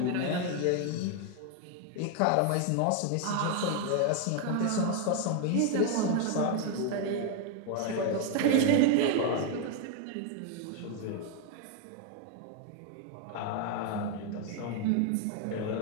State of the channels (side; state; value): both; different; correlation 0.00